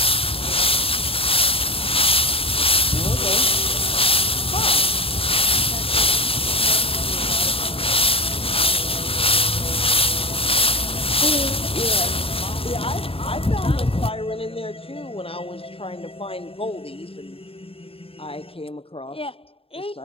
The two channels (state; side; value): late; right; 0.27 ms